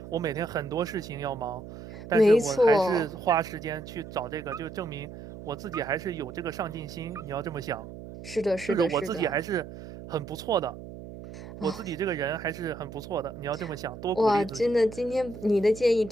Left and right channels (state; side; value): noise; right; hum, 13 dB below the sound